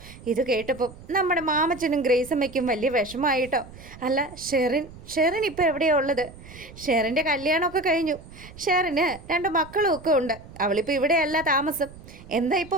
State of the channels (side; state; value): right; noise; rumble, 18 dB below the sound